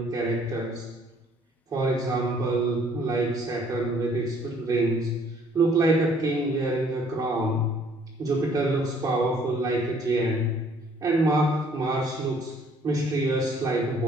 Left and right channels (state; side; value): normal; both; correlation 0.60